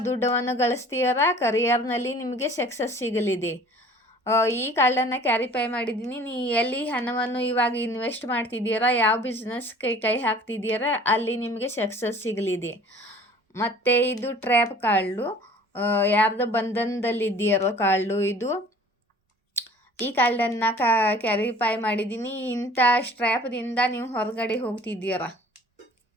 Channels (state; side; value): normal; both; correlation 0.49